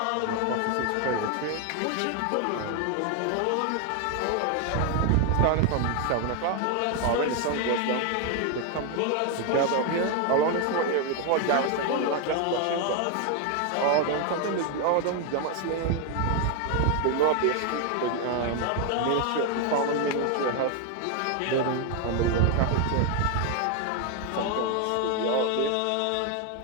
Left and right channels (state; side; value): different; both; correlation 0.01